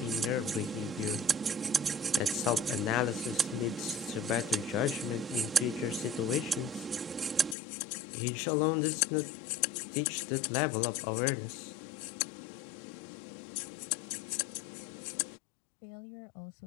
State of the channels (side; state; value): right; drops out; at 7.6 s